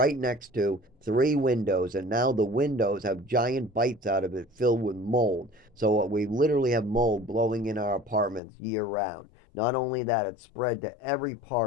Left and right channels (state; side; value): drops out; right; at 8.4 s